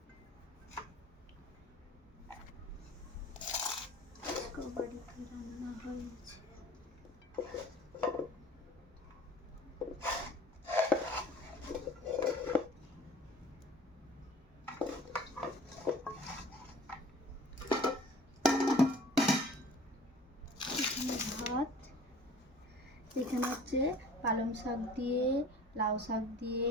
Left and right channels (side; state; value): both; normal; correlation 0.47